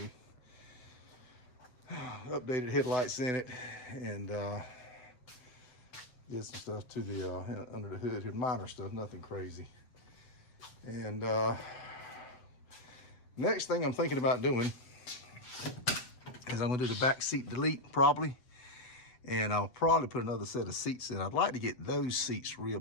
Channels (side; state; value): right; late; 7.9 ms